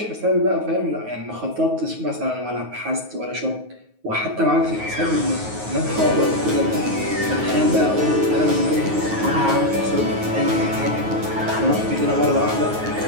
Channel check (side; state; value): left; late; 9.4 ms